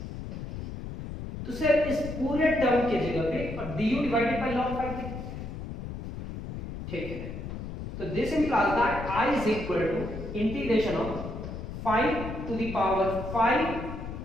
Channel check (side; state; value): left; noise; rumble, 8 dB below the sound